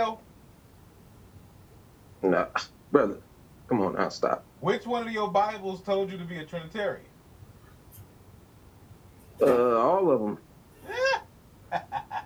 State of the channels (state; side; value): identical; both; correlation 1.00